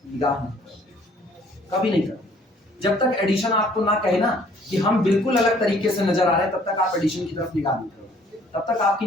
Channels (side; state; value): both; normal; correlation 0.58